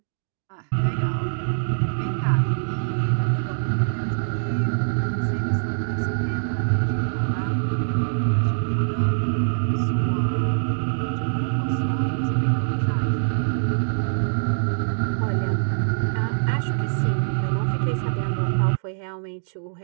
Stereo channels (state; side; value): silent; left; digital silence